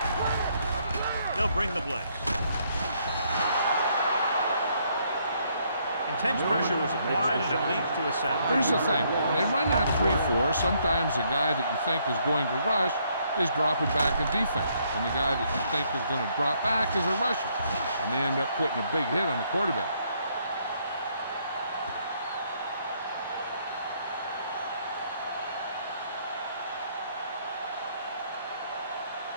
They'll bring the blitz. Intense pressure was applied, and it leads to a sack. Here's the thing. When they run that 3-4, sometimes the guy that you think is going to rush is dropping back in defense. And the guy that you think is going to drop back is a rusher. And they end up putting a big hit on the quarterback.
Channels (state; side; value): inverted; both; correlation -0.70